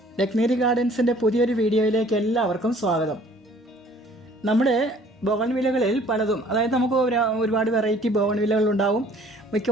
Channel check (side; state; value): both; normal; correlation 0.55